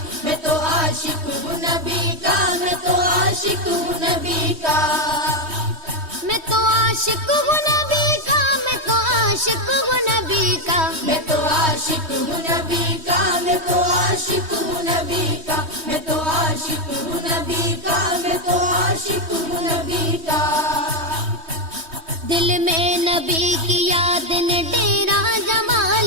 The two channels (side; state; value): left; late; 3.2 ms